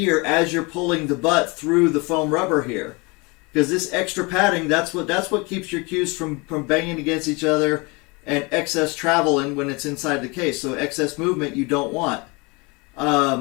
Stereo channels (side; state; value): right; quieter; 27.7 dB